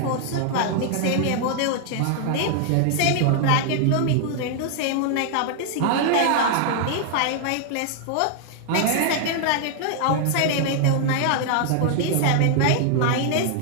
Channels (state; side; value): different; both; correlation 0.00